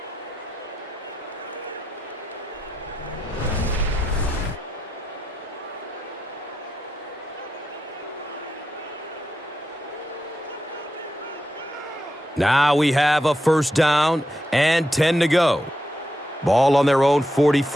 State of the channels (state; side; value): normal; both; correlation 0.86